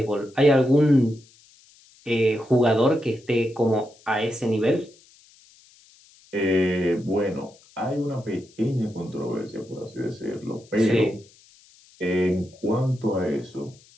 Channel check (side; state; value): left; noise; hiss, 28 dB below the sound